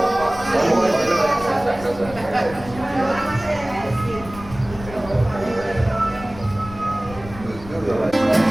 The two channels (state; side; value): noise; left; rumble, 15 dB below the sound